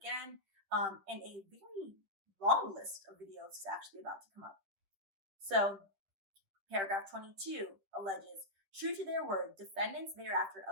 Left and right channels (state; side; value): late; left; 10 ms